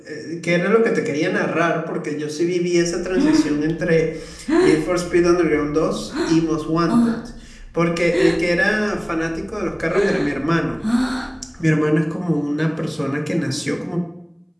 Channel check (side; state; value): both; identical; correlation 1.00